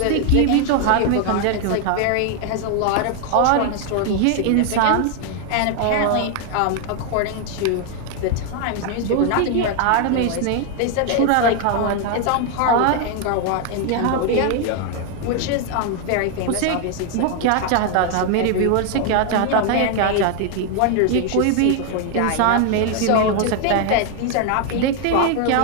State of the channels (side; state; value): both; different; correlation 0.00